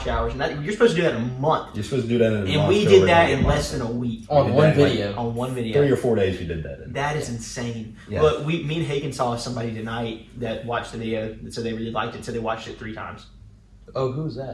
hours, and you're supposed to do that in a month. You're supposed to do that in a month. And we did that in less than a week. On one video. On one video. 3 or 4 days we did that in. That is insane. Yeah. But me and Hagen saw somebody tonight that watched the video, so they really liked it, so they watched it 3 times. Oh, who's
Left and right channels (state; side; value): identical; both; correlation 1.00